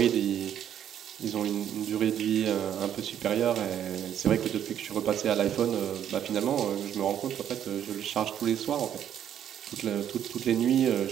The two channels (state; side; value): quieter; left; 10.0 dB